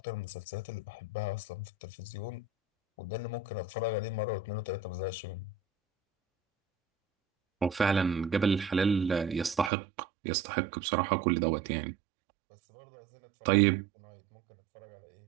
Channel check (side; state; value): left; drops out; at 9.7 s